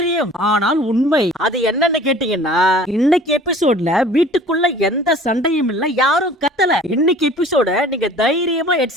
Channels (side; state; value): both; normal; correlation 0.47